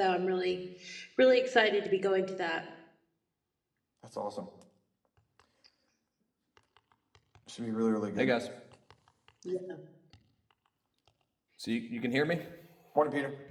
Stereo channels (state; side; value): identical; both; correlation 1.00